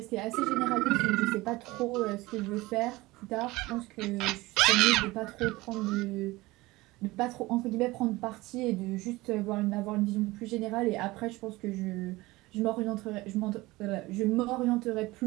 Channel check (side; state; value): left; quieter; 20.3 dB